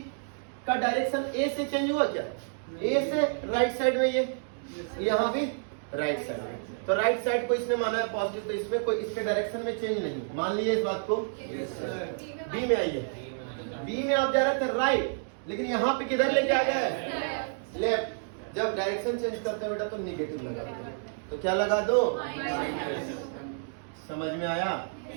का डायरेक्शन A से चेंज हुआ क्या? A से राइट साइड में, ये यहाँ भी राइट साइड में, तो राइट साइड को इसने माना है पॉजिटिव, तो इसमें कोई इसके डायरेक्शन में चेंज नहीं। मान लीजिए इस बात को। B में आइए, B में आप जा रहे थे राइट, लेकिन यहाँ पे किधर लेके आ गए? लेफ्ट। जब डायरेक्शन चेंज करते हैं बेटा तो निगेटिव लगा दो, तो क्या लगा दो? समझ में आया?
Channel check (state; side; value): silent; left; digital silence